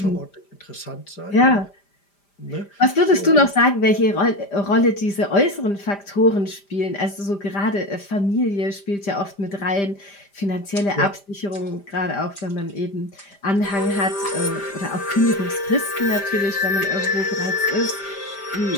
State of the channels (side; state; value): right; late; 5.0 ms